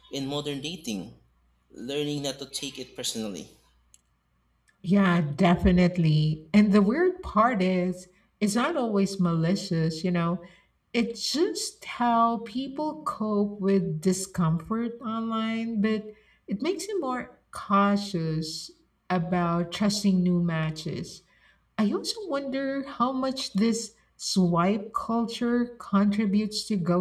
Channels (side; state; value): both; identical; correlation 1.00